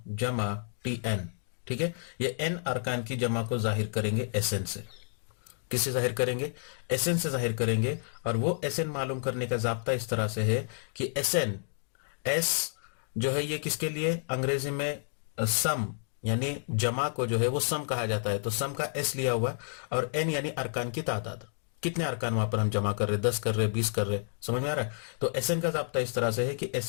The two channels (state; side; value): silent; right; digital silence